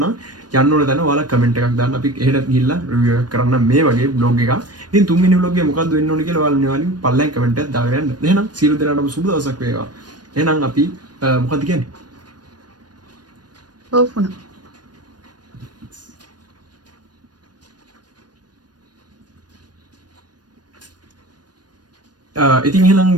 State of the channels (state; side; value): late; left; 0.69 ms